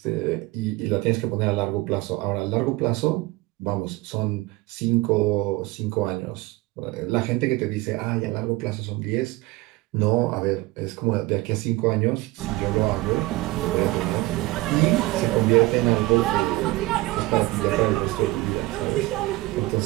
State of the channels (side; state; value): left; quieter; 20.4 dB